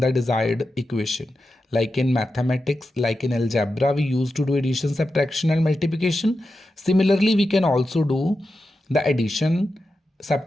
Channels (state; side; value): normal; both; correlation 0.90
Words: desired equation. Like in mathematics, like in algebra, we used to do addition, subtraction and multiplication. Similarly, we can also do the addition,